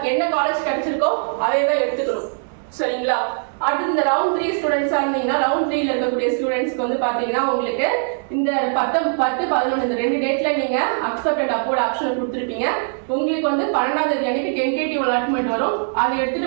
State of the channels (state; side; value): silent; left; digital silence